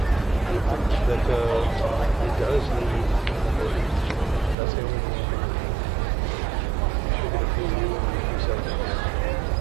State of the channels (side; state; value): left; drops out; at 4.5 s